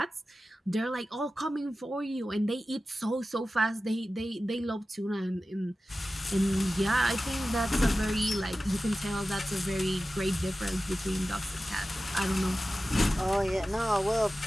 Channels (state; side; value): normal; both; correlation 0.94